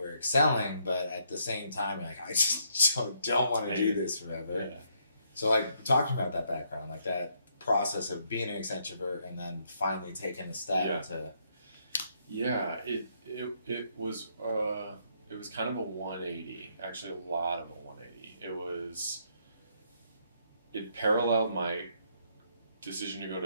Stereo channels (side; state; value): both; inverted; correlation -0.73